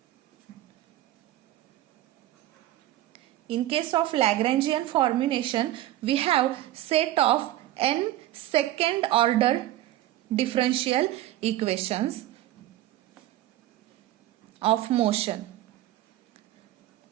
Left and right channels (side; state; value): left; quieter; 14.5 dB